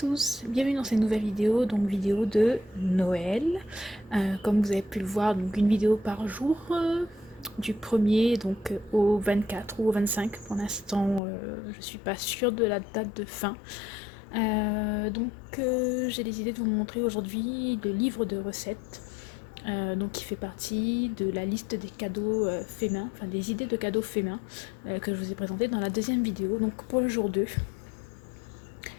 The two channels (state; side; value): drops out; right; at 11.2 s